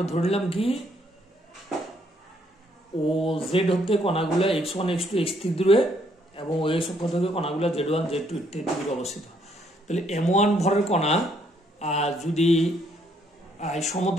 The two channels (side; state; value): both; normal; correlation 0.69